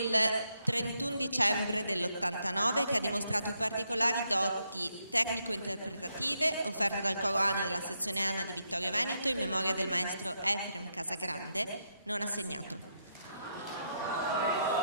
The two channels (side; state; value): both; inverted; correlation -0.80